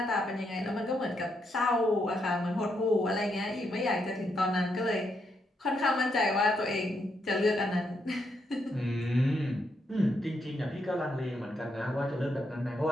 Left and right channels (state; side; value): normal; both; correlation 0.79